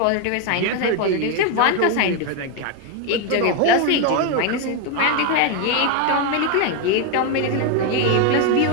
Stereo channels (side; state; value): both; different; correlation 0.01